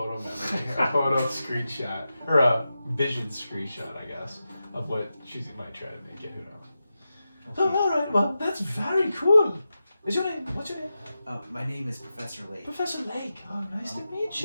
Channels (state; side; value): inverted; both; correlation -0.91